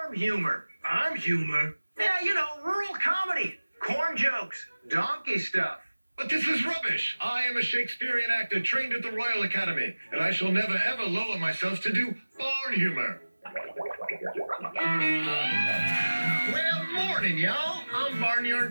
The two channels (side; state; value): both; inverted; correlation -1.00